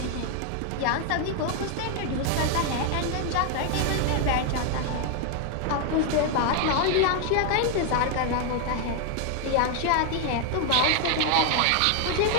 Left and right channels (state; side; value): different; both; correlation 0.01